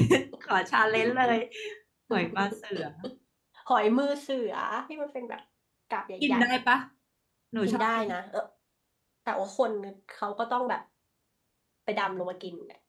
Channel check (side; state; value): both; identical; correlation 1.00